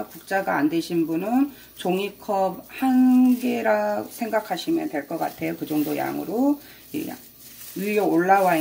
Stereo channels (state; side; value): identical; both; correlation 1.00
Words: 국자가 안 되신 분은 종이컵 한 개라 생각하시면 될 것 같아요. 그 정도 양으로 위에 올라와